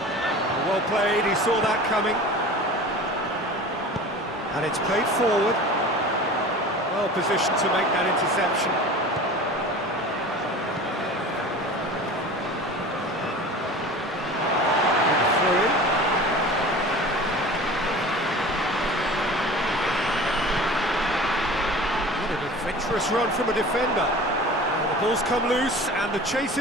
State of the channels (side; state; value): both; normal; correlation 0.38